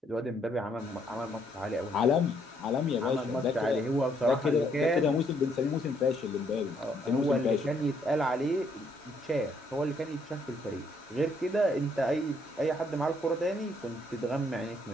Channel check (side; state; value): both; normal; correlation 0.69